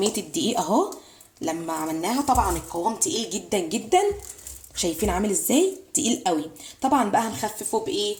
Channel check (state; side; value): identical; both; correlation 1.00